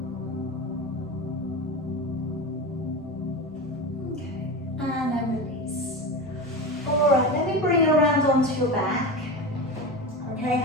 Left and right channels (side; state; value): both; normal; correlation 0.24